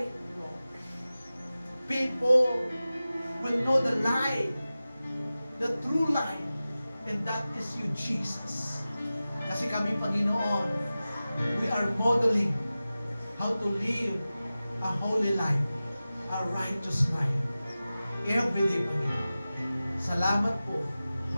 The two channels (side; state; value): both; inverted; correlation -0.96